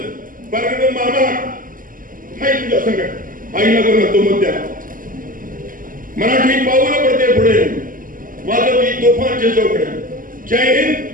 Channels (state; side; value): late; left; 0.40 ms